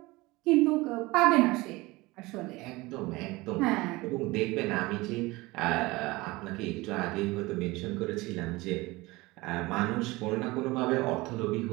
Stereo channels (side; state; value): left; quieter; 21.5 dB